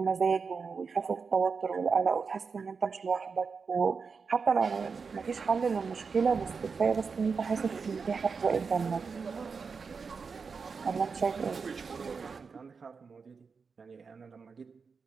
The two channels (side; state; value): left; quieter; 5.2 dB